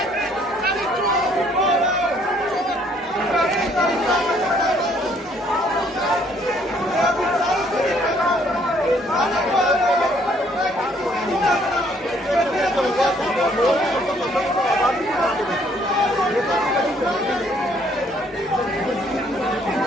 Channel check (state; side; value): normal; both; correlation 0.64